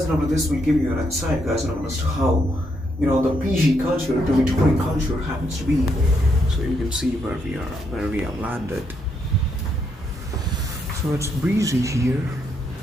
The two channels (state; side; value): normal; both; correlation 0.77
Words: this will give you an insight, guys, as to how the PG culture, dormitory culture happens to be. So you can see where we have landed. So it's breezy here.